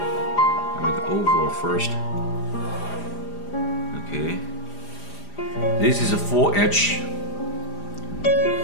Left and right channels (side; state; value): right; late; 4.9 ms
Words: make it overall first. Okay, this is a full edge.